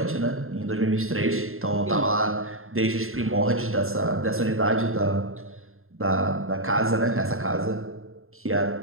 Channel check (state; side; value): late; left; 0.61 ms